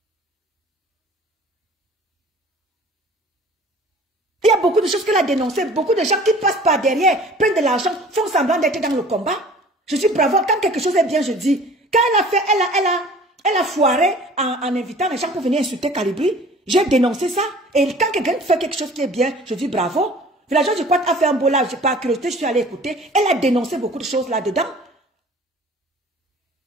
Il y a beaucoup de choses qu'elle a dénoncées, beaucoup de gens qui passent par derrière, prennent de l'argent, font semblant d'être dans le combat. Je dis bravo, quand quelque chose est bien, je dis. Quand elle a fait, elle a foiré en invitant les gens pour venir insulter Calibri, j'ai dénoncé ça. Et quand quelqu'un fait quelque chose qui est bien, je dis bravo. Villageois du Quad a fait un beau live, j'ai pas curiosité, je suis allée écouter. Elle a dénoncé beaucoup de choses là-dedans.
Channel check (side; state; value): both; normal; correlation 0.47